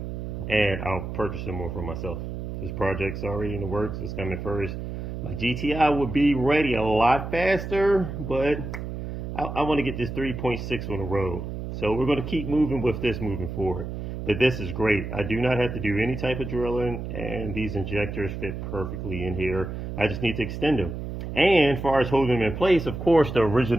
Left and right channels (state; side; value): noise; right; hum, 6 dB below the sound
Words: and I'll purchase some more for myself. This project's already in the works. It's coming first. My GTI will be ready a lot faster, but I want to get this 3.6 on the road. So we're going to keep moving with this moving forward. But this is great. I do not have to do any type of drilling, and these injectors fit perfectly in here. I just need to extend them. And as far as holding them in place, of course, the